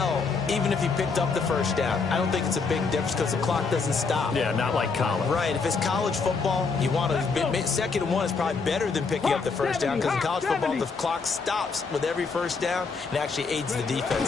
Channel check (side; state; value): right; quieter; 4.7 dB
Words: even if he picked up the first down, I don't think it's a big difference because the clock doesn't stop. Yeah, not like college. Right. If it's college football, you want to 2nd and 1 is probably better than picking up the first down because in college football, the clock stops with every first down and actually aids the